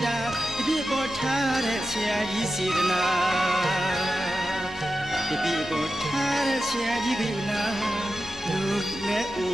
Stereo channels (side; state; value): both; normal; correlation 0.92